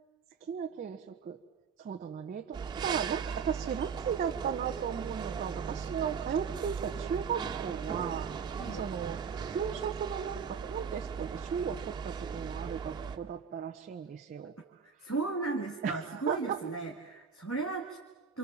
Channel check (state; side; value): quieter; left; 6.2 dB